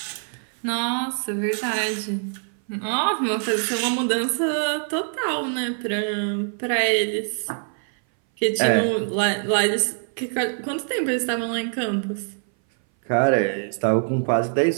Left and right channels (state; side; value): silent; left; 59 dB below the other